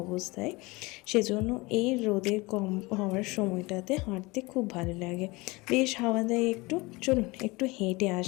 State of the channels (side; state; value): right; quieter; 23.8 dB